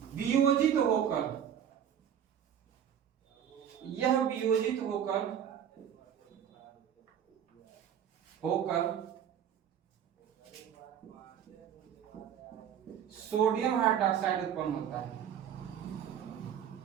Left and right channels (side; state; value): left; quieter; 9.0 dB